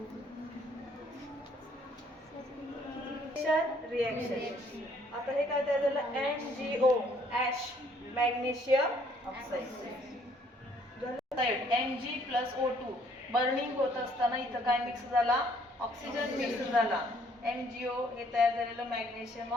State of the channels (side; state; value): both; normal; correlation 0.64